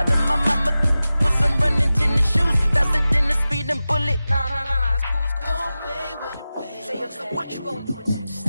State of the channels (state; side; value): inverted; both; correlation -0.95